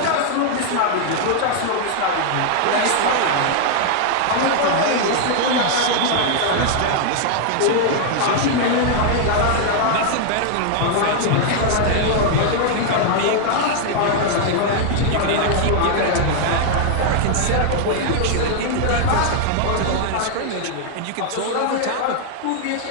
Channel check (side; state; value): both; different; correlation 0.00